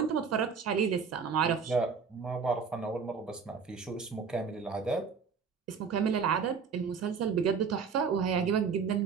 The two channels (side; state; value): left; quieter; 5.9 dB